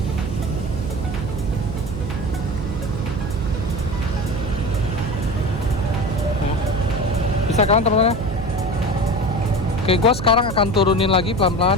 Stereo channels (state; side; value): noise; right; hum, 6 dB below the sound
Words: Bisa kan teman-teman? Oke, gue sekarang akan turunin lagi